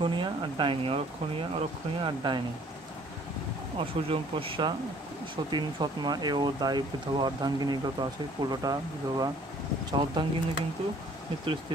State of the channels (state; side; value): normal; both; correlation 0.56